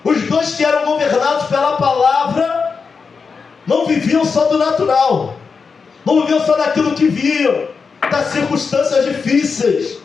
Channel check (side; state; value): right; quieter; 5.2 dB